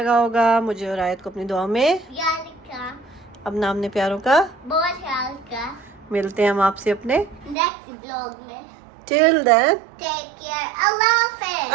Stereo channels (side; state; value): left; drops out; at 7.6 s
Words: होगा। मुझे और आयत को अपनी दुआ में याद रखा, अपना हमने प्यारों का बहुत ख्याल का। मिलते हैं हम आपसे अपने नेक्स्ट ब्लॉग में। टिल देन टेक केयर, अल्लाह हाफिज़।